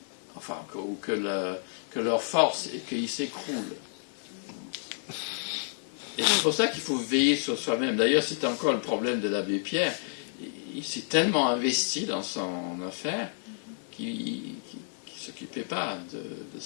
enfin, que leur force, et qu'ils s'écroulent. Et c'est pour ça qu'il faut veiller sur soi-même. D'ailleurs, c'était encore le problème de l'abbé Pierre. Il s'est tellement investi dans son affaire qu'il ne s'occupait pas de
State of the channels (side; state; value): right; silent; digital silence